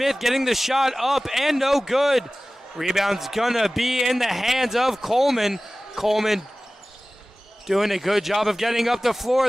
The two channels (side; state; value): both; normal; correlation 0.97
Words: getting the shot up and no good. Rebound's gonna be in the hands of Coleman. Coleman doing a good job of getting up the